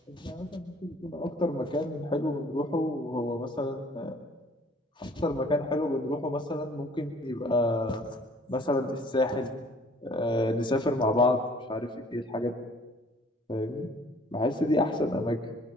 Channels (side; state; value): both; normal; correlation 0.55